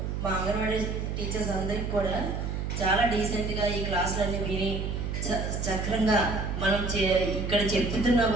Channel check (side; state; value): right; noise; hum, 3 dB below the sound